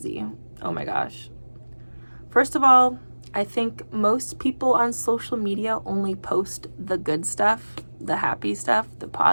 Oh my gosh. First of all, I think most people on social media only post the good stuff, the happy stuff, the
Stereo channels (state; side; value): inverted; both; correlation -1.00